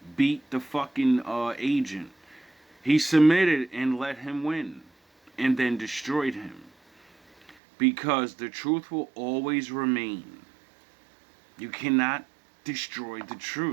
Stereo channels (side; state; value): left; drops out; at 7.6 s